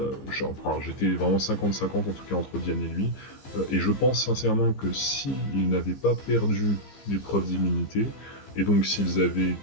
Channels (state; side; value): late; right; 15 ms